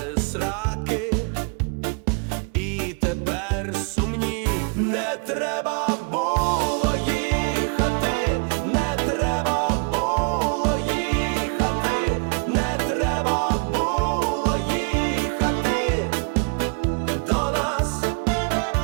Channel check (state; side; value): quieter; left; 36.5 dB